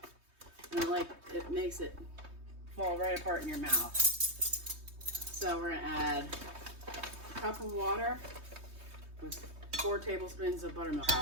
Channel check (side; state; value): left; late; 3.2 ms